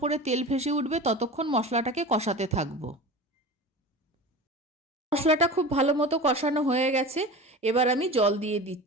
তেল ভেসে উঠবে ততক্ষণ মশলাটাকে কষাতে থাকবো। মশলাটা খুব ভালো মতো কষানো হয়ে গেছে, এবার আমি জল দিয়ে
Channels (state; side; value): normal; both; correlation 0.33